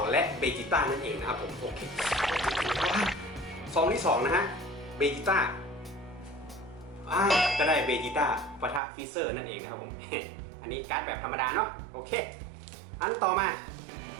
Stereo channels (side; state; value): left; drops out; at 8.8 s